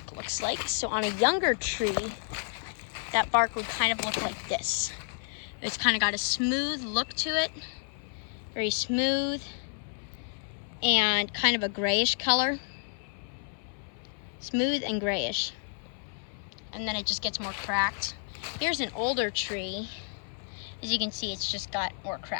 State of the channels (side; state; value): right; silent; 55 dB below the other